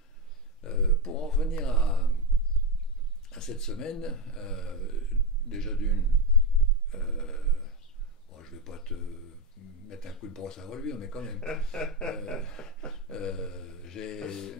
Ok. pour en revenir à cette semaine, déjà d'une, euh, bon, je ne vais pas te mettre un coup de brosse à reluire, mais quand même, euh,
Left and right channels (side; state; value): both; normal; correlation 0.10